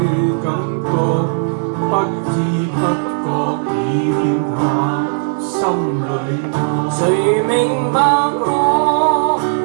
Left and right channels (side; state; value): left; silent; digital silence